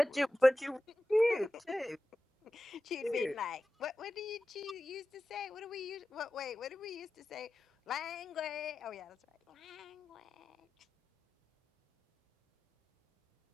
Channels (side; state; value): both; normal; correlation 0.94